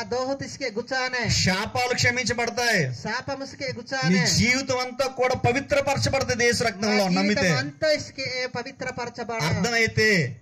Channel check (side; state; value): both; identical; correlation 1.00